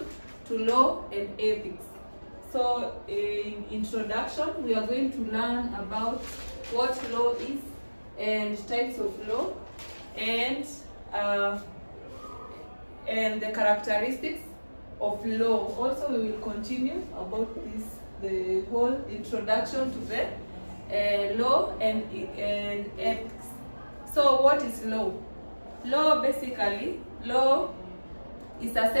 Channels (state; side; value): inverted; both; correlation -1.00